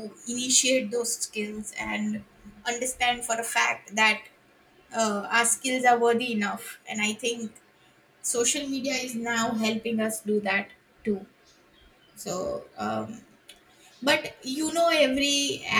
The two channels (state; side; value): identical; both; correlation 1.00